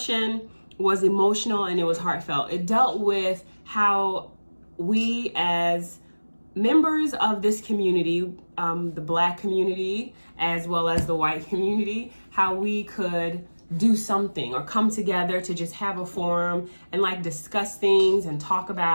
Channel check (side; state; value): both; inverted; correlation -1.00